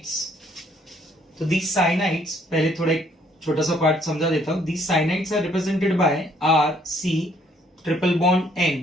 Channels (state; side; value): normal; both; correlation 0.65